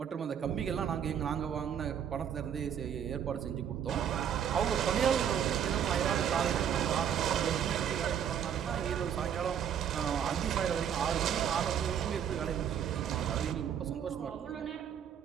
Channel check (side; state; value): left; quieter; 8.8 dB